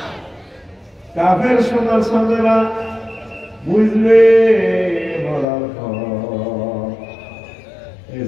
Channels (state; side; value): drops out; right; at 5.5 s